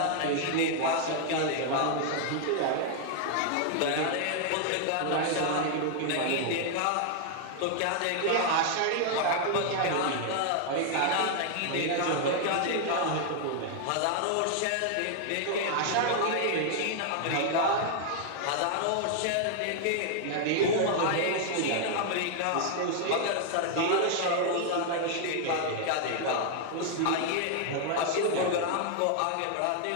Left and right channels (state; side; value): different; both; correlation 0.00